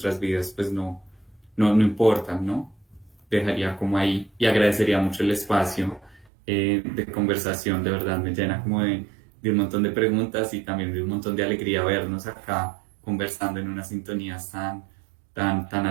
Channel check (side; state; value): left; drops out; at 6.3 s